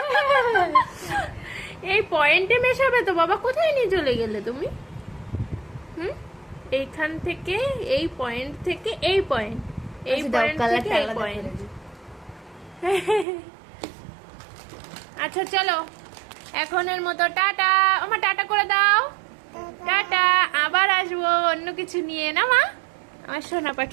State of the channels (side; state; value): left; drops out; at 13.2 s